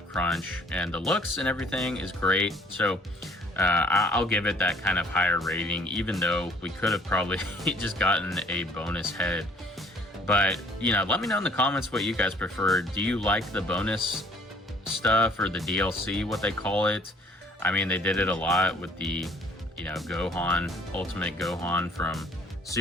crunch, and the looks and everything is great. So I'll give it that kind of higher rating, even though we could have probably just gotten a bonus head. But, you know, let me know in the comments what you guys prefer. Do you like the bonus stuff, or the DLC, what they call it? I mean, they did it a lot with the, you know, Gohan, Ultimate Gohan from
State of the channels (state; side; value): normal; both; correlation 0.56